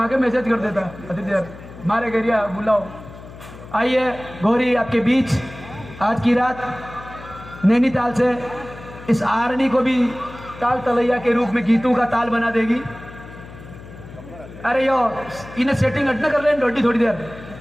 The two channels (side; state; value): left; noise; hum, 16 dB below the sound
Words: के मैसेज कर देता अति देर मारे गरिया बुलाओ। आइए गौरी आपके बीच आज की रात नैनीताल से इस आरनी को भी ताल तलैया के रूप में गीतों का ताल बना देगी। अरे यो इन्हें सेटिंग अटना कर ले रोटी थोड़ी देर